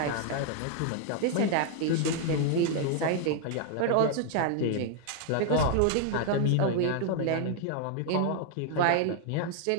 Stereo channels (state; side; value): different; both; correlation 0.00